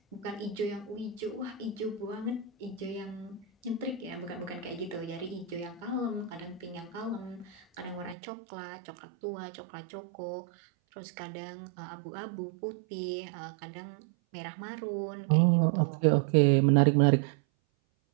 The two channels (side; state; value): left; drops out; at 8.2 s